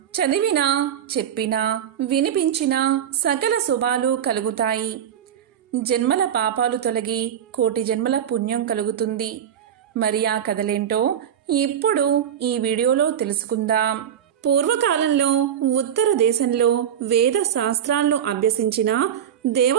చదివినా, చెప్పినా, వినిపించినా సకల శుభాలు కలుగుతాయి. జన్మల పాపాలు తొలగి కోటి జన్మల పుణ్యం కలుగుతుంది. మరి ఆ కథలేంటో ఇప్పుడు ఈ వీడియోలో తెలుసుకుందాం. పూర్వకాలంలో ఉత్తర దేశంలో వేద శాస్త్రాలను అభ్యసించిన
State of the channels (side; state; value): left; quieter; 9.4 dB